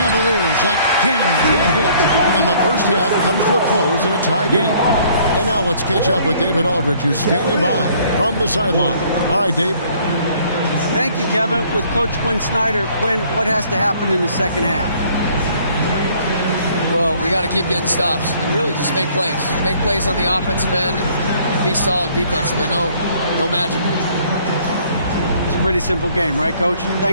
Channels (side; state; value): both; inverted; correlation -0.60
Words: again can't hit. And the first half comes to a close in a tie game. And now let's catch up with David Aldridge, who's standing by from the sideline. All right, Dave. Thank you, Kevin. With Coach Quinn Snyder, Quinn, what has to happen in the second half? Well, we got to keep getting stops and really just make plays. Make plays on the offensive end and be solid defensively. No magic. It's a pretty simple game, right, Coach?